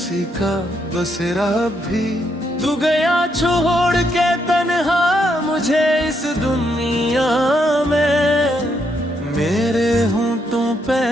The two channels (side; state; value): both; normal; correlation 0.77